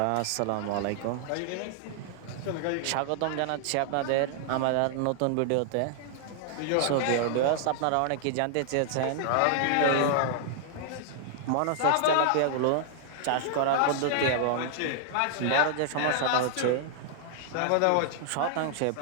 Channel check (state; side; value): different; both; correlation 0.00